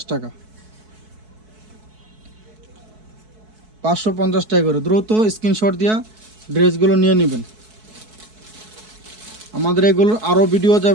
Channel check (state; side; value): late; left; 4.6 ms